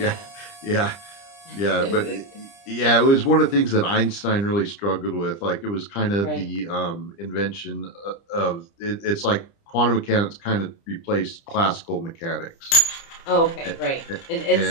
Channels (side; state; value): right; late; 30 ms